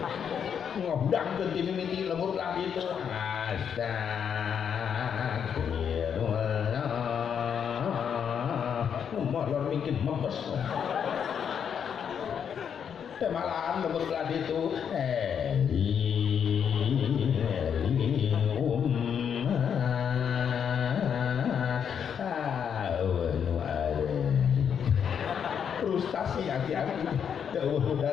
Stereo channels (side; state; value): right; quieter; 7.7 dB